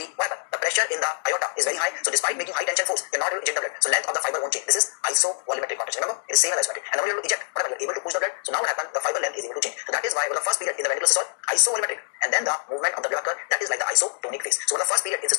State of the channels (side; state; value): right; silent; 62 dB below the other